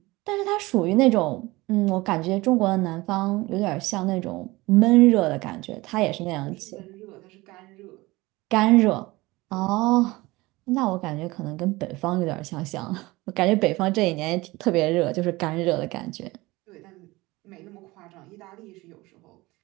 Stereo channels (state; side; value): quieter; left; 21.1 dB